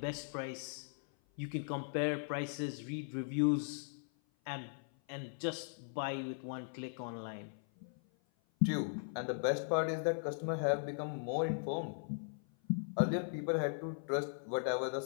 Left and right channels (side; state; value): right; silent; 52 dB below the other